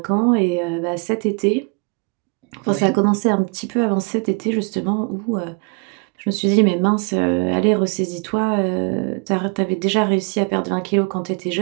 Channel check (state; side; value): quieter; left; 32.5 dB